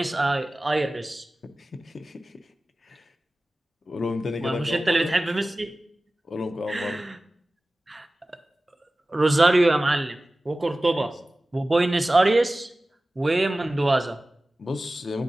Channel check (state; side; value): normal; both; correlation 0.97